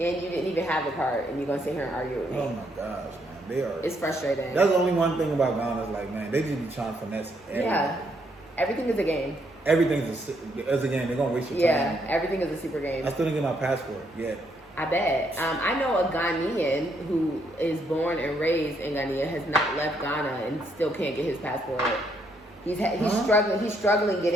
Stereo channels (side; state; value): both; normal; correlation 0.73